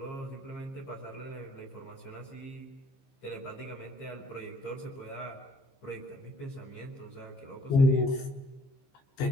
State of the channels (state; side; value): late; right; 15 ms